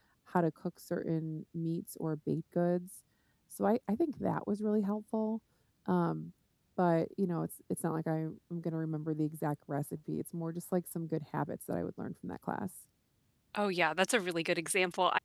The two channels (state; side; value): identical; both; correlation 1.00